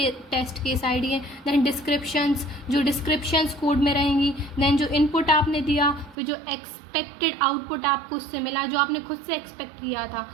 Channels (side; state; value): left; drops out; at 6.2 s